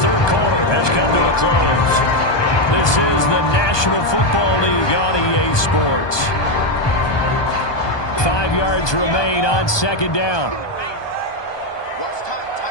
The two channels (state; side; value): late; right; 1.2 ms